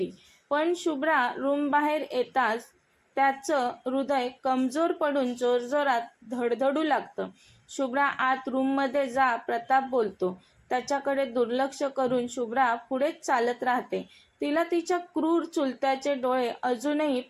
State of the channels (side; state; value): both; identical; correlation 1.00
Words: पण शुभ्रा रूम बाहेर येताच त्याचं हृदय कमजोर पडून जोरजोरात धडधडू लागतं. शुभ्रा आत रूममध्ये जा, प्रताप बोलतो. त्याच्याकडे दुर्लक्ष करून शुभ्रा पुढेच चालत राहते. तिला तिच्या क्रूर चुलत्याचे डोळे अजूनही